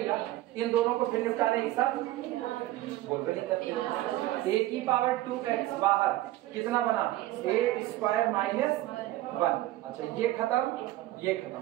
इन दोनों को फिर निपटा दे एक साथ, बोल नहीं करते। a की पावर 2x बाहर कितना बना, a² - 1। अच्छा ये खत्म, ये खत्म,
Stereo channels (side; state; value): left; quieter; 15.9 dB